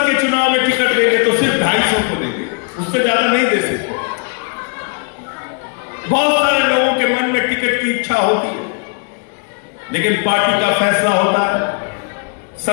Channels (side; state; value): right; quieter; 37.0 dB